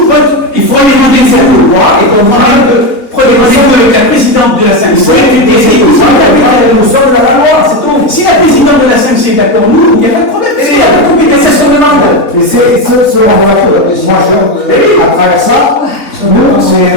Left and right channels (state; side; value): late; right; 3.4 ms